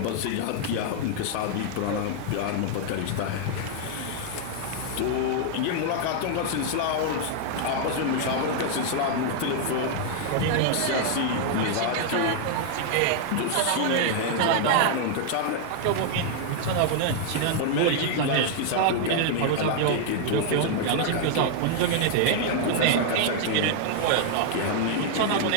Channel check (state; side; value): different; both; correlation 0.00